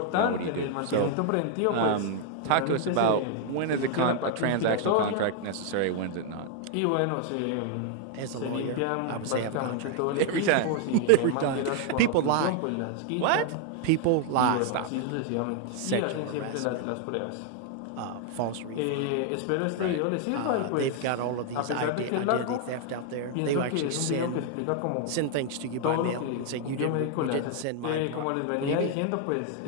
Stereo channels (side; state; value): both; different; correlation 0.00